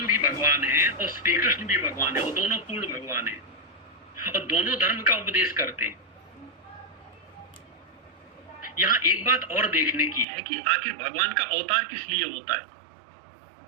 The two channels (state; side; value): drops out; left; at 10.2 s